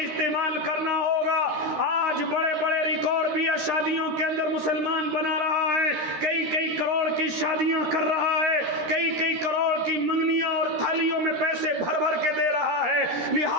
استعمال کرنا ہوگا۔ آج بڑے بڑے ریکارڈ بھی شادیوں کے اندر مسلمان بنا رہا ہے، کئی کروڑ کی شادیاں کر رہا ہے، کئی کروڑ کی منگنیاں اور تھالیوں میں پیسے بھر کے دے رہا ہے۔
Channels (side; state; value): left; late; 13 ms